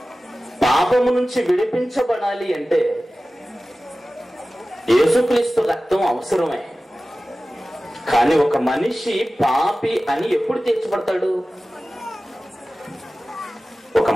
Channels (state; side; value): normal; both; correlation 0.96